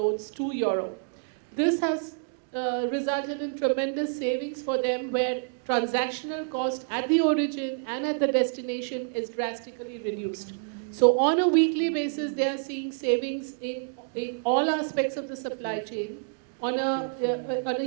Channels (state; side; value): silent; left; digital silence